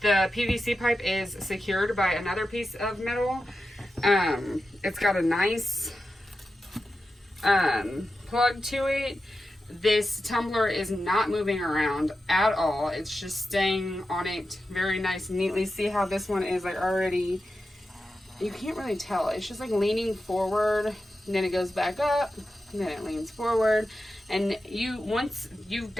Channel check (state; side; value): normal; both; correlation 0.91